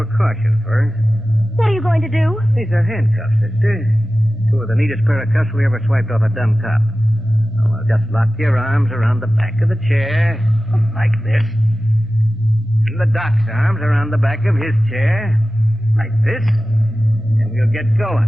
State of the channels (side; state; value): both; normal; correlation 0.95